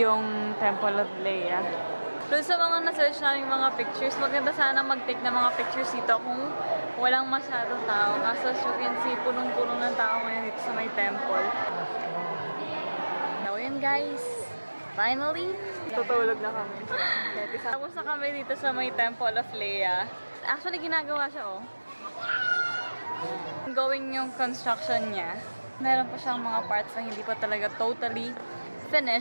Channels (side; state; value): both; inverted; correlation -1.00